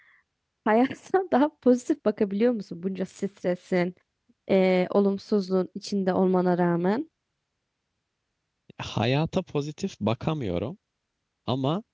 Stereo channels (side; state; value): both; identical; correlation 1.00